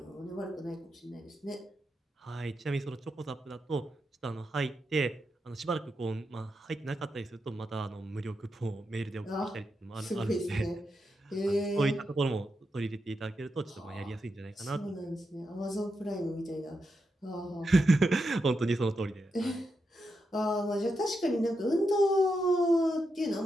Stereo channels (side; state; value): both; normal; correlation 0.85